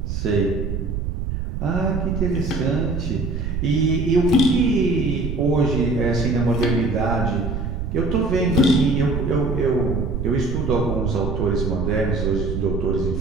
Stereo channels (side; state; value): right; noise; rumble, 3 dB below the sound